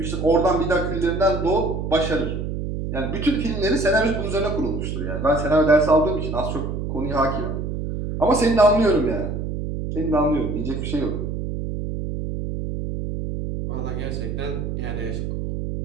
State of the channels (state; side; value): noise; right; hum, 4 dB below the sound